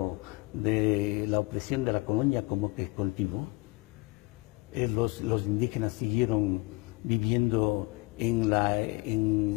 la opresión de la colonia como que continuó. Los indígenas siguieron viviendo en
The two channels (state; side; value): quieter; right; 25.5 dB